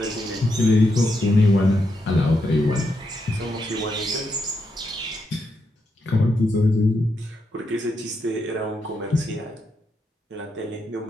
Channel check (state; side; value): normal; both; correlation 0.82